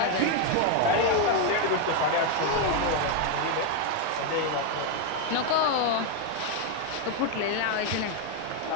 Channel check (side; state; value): both; different; correlation 0.01